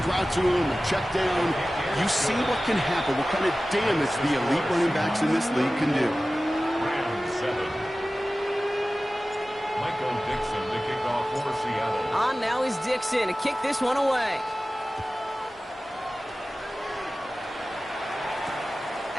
route to him, a check down, you see what can happen, what kind of damage the elite running backs in this league can do. Round 7. Michael Dixon to kick off for Seattle. On now is Dixon to kick this one away.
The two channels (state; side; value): normal; both; correlation 0.96